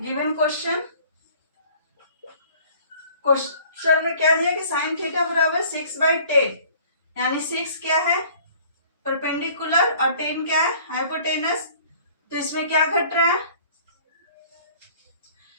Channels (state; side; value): inverted; both; correlation -0.52